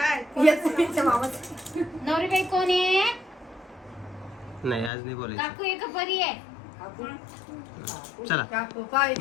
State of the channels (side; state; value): right; drops out; at 4.9 s